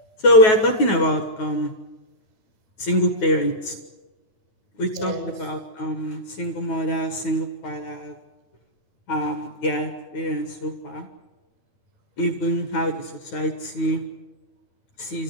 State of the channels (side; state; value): right; late; 9.3 ms